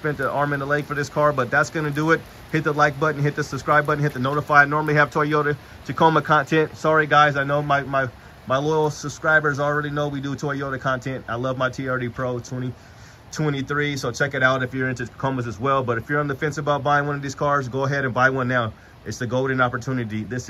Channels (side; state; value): both; identical; correlation 1.00